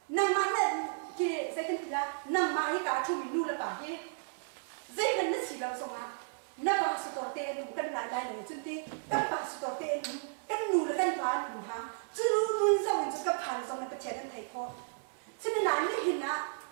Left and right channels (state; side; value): silent; left; digital silence